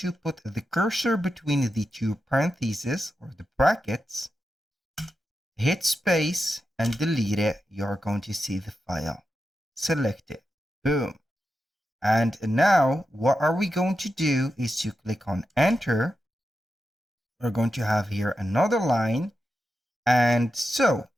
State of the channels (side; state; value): both; normal; correlation 0.89